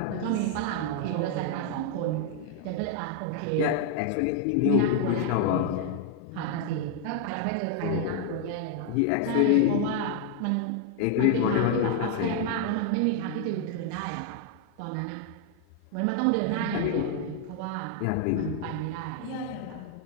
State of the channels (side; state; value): both; different; correlation 0.00